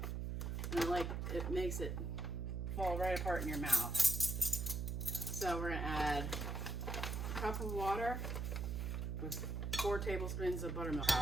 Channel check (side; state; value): right; noise; hum, 2 dB below the sound